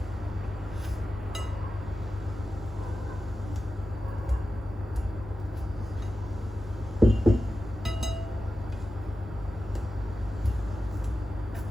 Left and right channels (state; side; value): normal; both; correlation 0.93